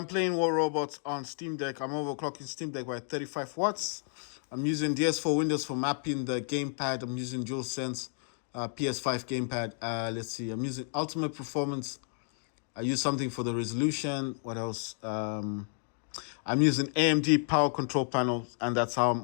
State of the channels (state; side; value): silent; right; 57 dB below the other